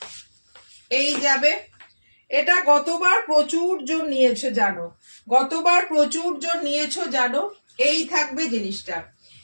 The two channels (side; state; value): both; inverted; correlation -1.00